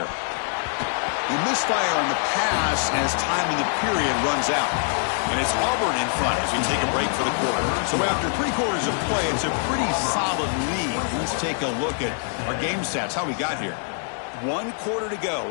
He misfire on the pass as time in the period runs out. And it's Auburn in front as we take a break for the quarter. So after 3 quarters of play, it's a pretty solid lead. Let's take a look at our game stats, how we got here. 1 quarter to go.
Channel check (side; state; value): right; silent; 62 dB below the other